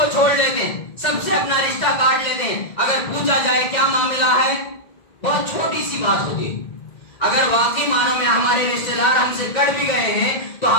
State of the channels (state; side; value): late; right; 2.1 ms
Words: چھوڑ لیتے ہیں، سب سے اپنا رشتہ کاٹ لیتے ہیں۔ اگر پوچھا جائے کیا معاملہ ہے، بہت چھوٹی سی بات ہوتی ہے۔ اگر واقعی معنوں میں ہمارے رشتہ دار ہم سے کٹ بھی گئے ہیں تو